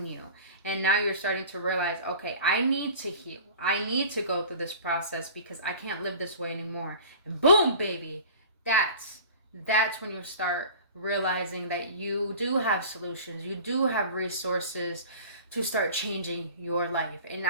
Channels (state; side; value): inverted; both; correlation -0.41